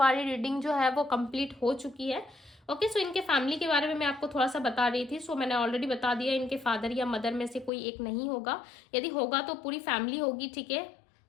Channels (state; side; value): drops out; right; at 7.7 s